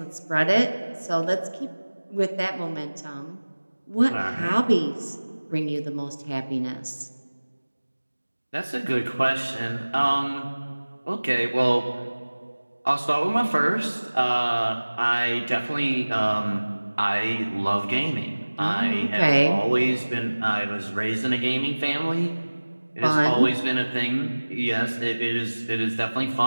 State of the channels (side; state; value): both; inverted; correlation -1.00